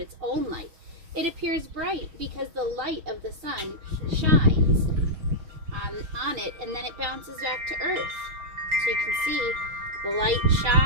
its own light. It appears bright because the light of the sun shines on it, and then it bounces back to Earth. So you can see the light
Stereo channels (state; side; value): late; left; 6.3 ms